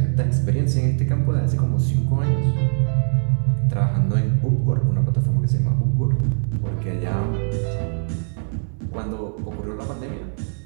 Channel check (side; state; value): left; silent; digital silence